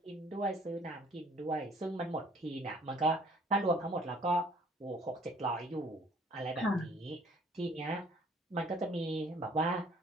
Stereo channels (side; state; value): both; normal; correlation 0.57